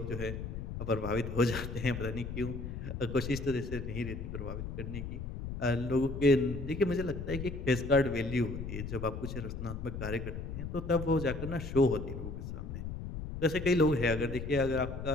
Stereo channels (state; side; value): noise; left; rumble, 6 dB below the sound